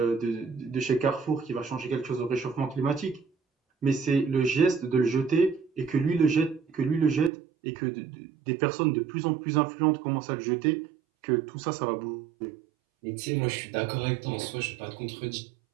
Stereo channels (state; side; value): drops out; left; at 7.3 s